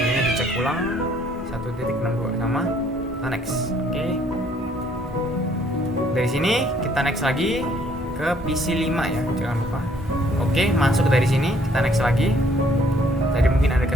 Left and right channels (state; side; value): normal; both; correlation 0.63